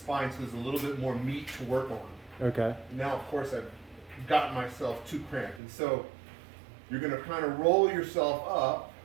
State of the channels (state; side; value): drops out; left; at 5.6 s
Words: so there's a little bit more meat to work on. Okay. Now, of course, I've gotten myself too cramped, and so you're going to kind of roll yourself up